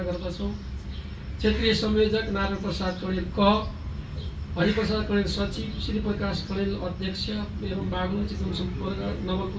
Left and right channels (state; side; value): identical; both; correlation 1.00